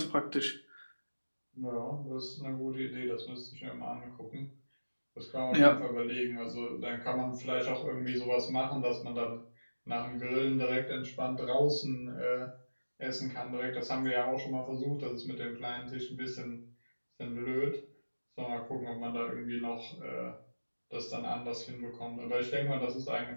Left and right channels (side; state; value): both; inverted; correlation -1.00